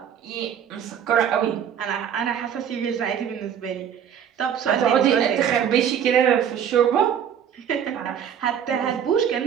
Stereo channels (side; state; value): left; quieter; 8.7 dB